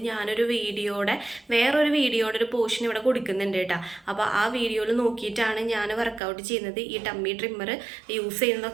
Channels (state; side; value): drops out; left; at 6.2 s